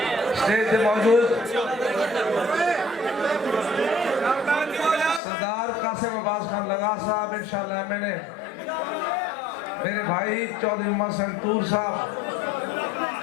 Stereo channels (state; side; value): drops out; right; at 5.2 s